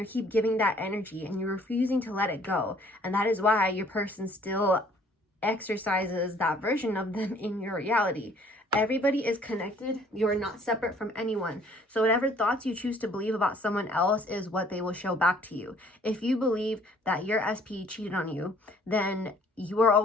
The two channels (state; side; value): normal; both; correlation 0.58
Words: keep giving that energy and you're refusing to let it go. And that is why your person still exercises that version of them in your reality. Everybody is connected. You're not separate from anyone. So whatever thoughts you choose to believe about someone else is what they will show back to you. If you believe that your SP cheated on you, then you are